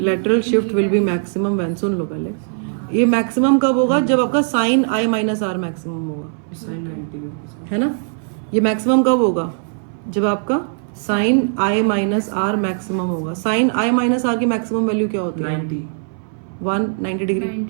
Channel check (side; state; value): left; silent; 61 dB below the other